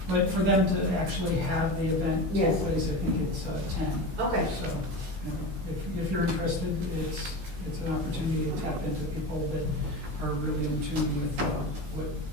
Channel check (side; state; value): left; late; 16 ms